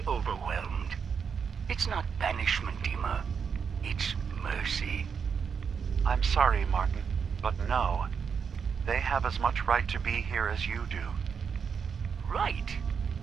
overwhelmed? It's not banishment, Dima. It's mercy. I'm sorry, Martin, but no. They have as much right to be here as you do. Right.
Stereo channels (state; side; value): quieter; left; 6.5 dB